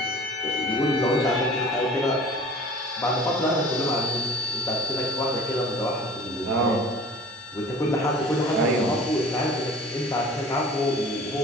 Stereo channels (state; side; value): normal; both; correlation 0.43